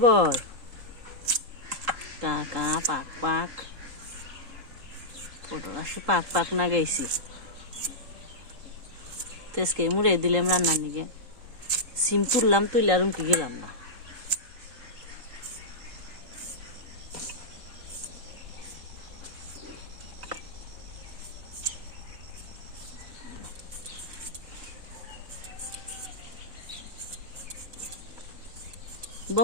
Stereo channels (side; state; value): left; late; 3.7 ms